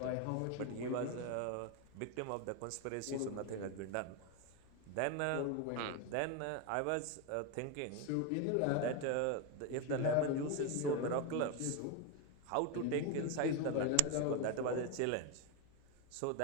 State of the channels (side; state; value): both; different; correlation 0.02